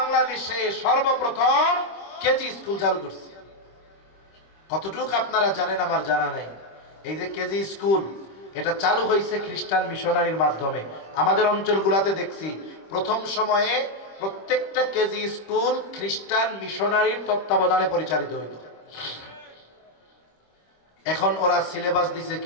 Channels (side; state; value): right; late; 26 ms